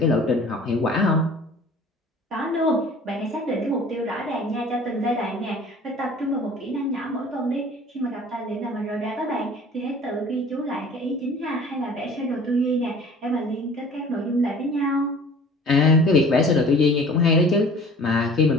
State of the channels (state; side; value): normal; both; correlation 0.47